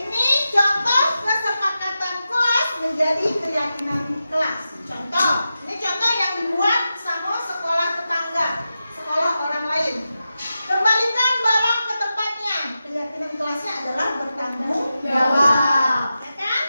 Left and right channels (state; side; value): inverted; both; correlation -0.91